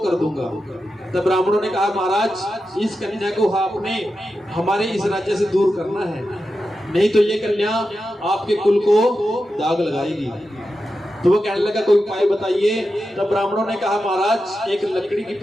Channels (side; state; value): both; normal; correlation 0.90